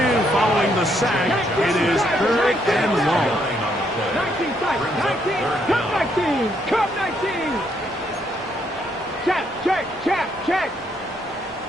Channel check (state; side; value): normal; both; correlation 0.73